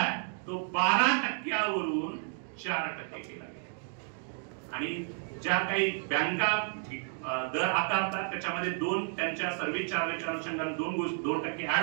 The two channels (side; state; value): left; silent; 55 dB below the other